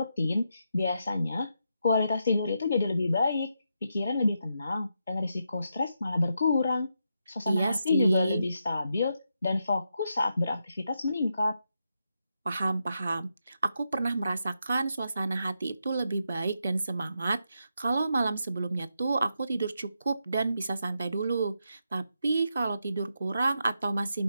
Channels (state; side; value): inverted; both; correlation -0.83